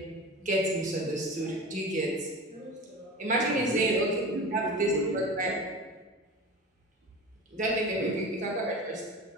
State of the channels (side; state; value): both; normal; correlation 0.32